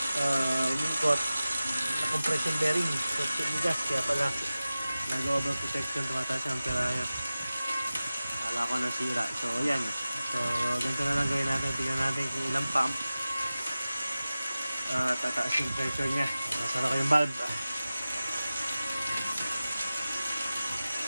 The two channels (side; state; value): both; inverted; correlation -0.96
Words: umikot na compression bearing, so tinigas, kaya pala nag-over protection, tumataas ang amperahe. Kala ko nasira. So yan, so ganito na lang gawin natin. Tingnan natin kung ilang pump tataas yung pressure nya. Nasara ko yung valve.